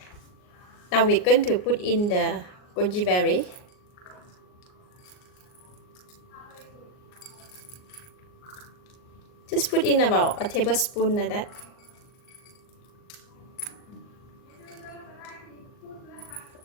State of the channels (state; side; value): late; right; 39 ms